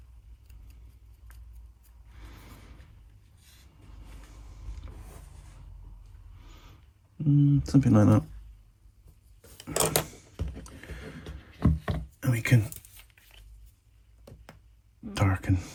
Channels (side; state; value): both; identical; correlation 1.00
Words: Something like that. And we can darken